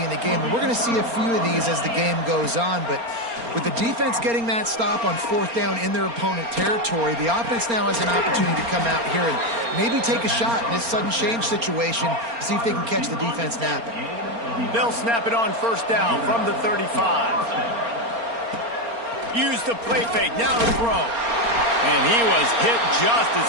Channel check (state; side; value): late; left; 4.3 ms